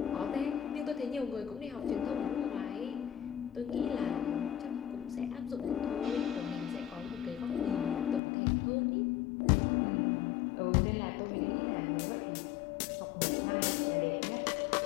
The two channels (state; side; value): drops out; right; at 8.2 s